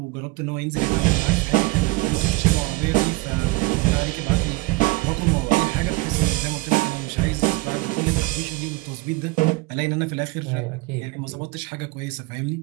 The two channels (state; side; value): quieter; left; 22.7 dB